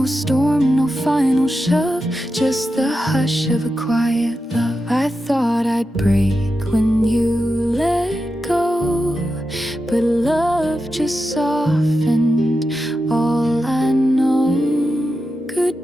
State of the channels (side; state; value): both; normal; correlation 0.90